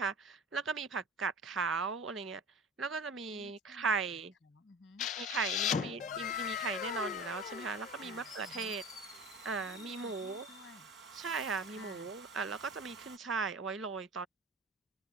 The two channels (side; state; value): both; normal; correlation 0.35